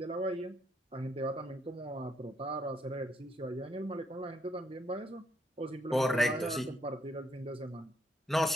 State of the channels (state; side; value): normal; both; correlation 0.73